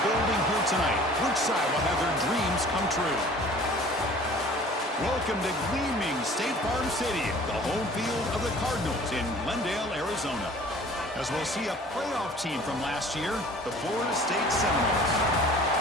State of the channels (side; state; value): both; normal; correlation 0.48